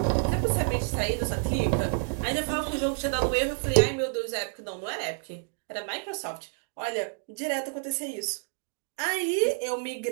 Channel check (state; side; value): silent; left; 55 dB below the other